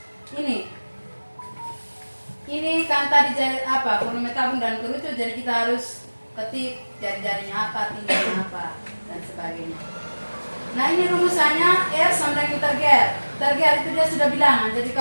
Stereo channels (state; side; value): inverted; both; correlation -1.00